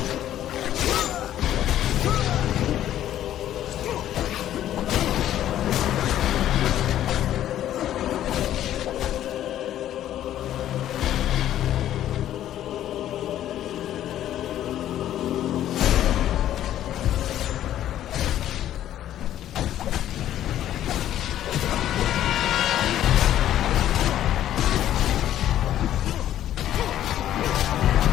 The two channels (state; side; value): quieter; right; 12.0 dB